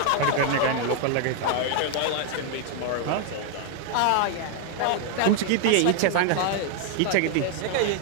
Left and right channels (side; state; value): both; different; correlation 0.00